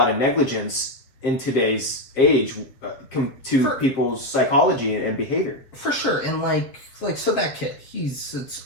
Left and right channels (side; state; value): right; late; 7.7 ms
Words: of negligence in today's age to people's psychology and behavior. For sure. And like so that kid, it's